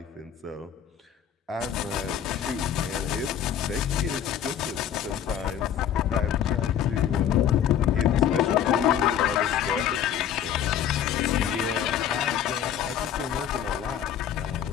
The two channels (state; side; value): quieter; right; 9.4 dB